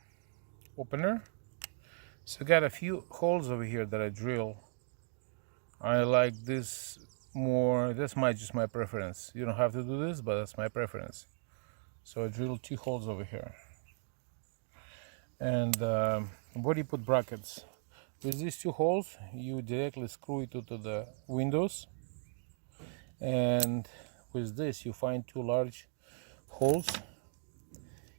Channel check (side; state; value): left; silent; 53 dB below the other